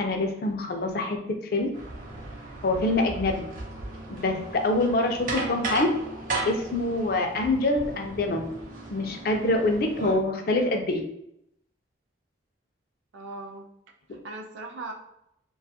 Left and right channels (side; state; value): both; normal; correlation 0.18